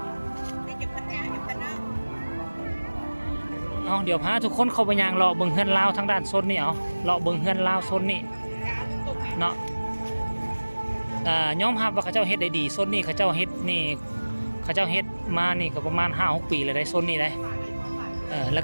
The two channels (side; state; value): both; inverted; correlation -1.00